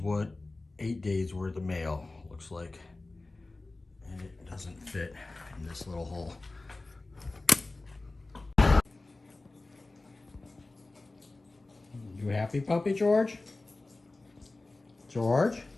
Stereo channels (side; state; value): right; quieter; 3.1 dB